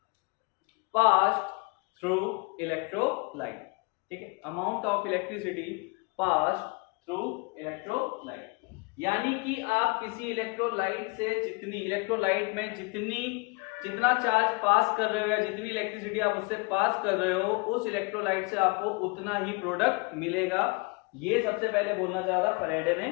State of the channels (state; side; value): quieter; right; 29.5 dB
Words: passed through electrolyte, ठीक है। Amount of electricity passed through electrolyte, यानी कि आप किसी electrolyte से electrolyte में जितना charge पास कर रहे हो या जितनी इलेक्ट्रिसिटी आप उससे पास कर रहे हो, उस इलेक्ट्रोलाइट से आपको उतना ही प्रोडक्ट मिलेगा। ये सबसे पहले बोलना चाहा था फैराडे ने